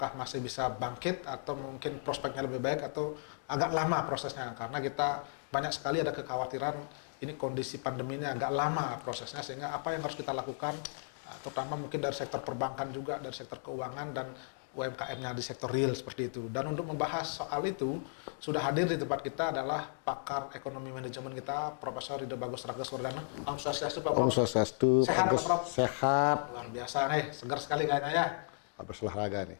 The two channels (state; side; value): silent; right; digital silence